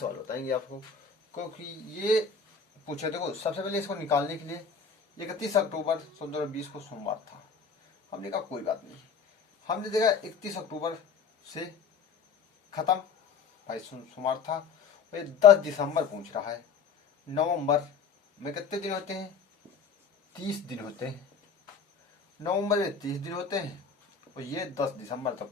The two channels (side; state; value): right; quieter; 5.8 dB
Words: बताएंगे आपको। क्योंकि ये पूछे, देखो सबसे पहले इसको निकालने के लिए 31 अक्टूबर 2020 को सोमवार था, हमने कहा कोई बात नहीं। हमने देखा 31 अक्टूबर से खत्म, भाई सोमवार था। ये 10 दिसंबर पूछ रहा है, नवंबर में कितने दिन होते हैं, 30 दिन होते हैं। नवंबर में 30 दिन होते हैं, और ये 10 दिसंबर